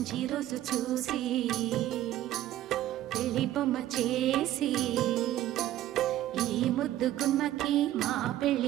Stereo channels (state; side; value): quieter; left; 13.6 dB